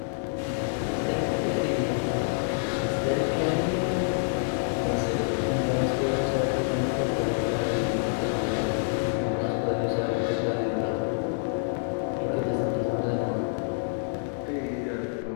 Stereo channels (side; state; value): right; silent; digital silence